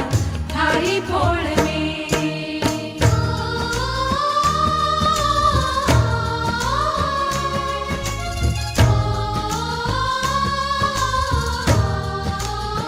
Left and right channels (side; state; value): both; identical; correlation 1.00